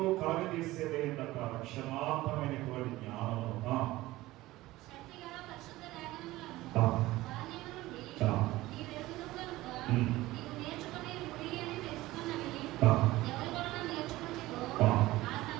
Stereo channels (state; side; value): quieter; left; 17.8 dB